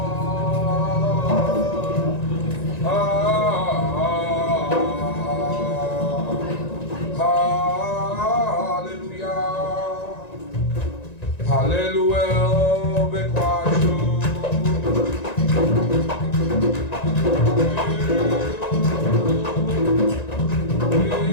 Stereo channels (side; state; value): right; late; 1.9 ms